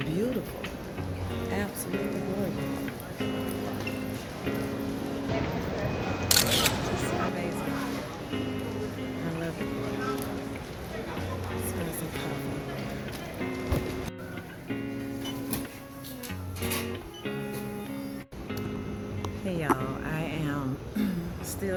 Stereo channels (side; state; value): both; identical; correlation 1.00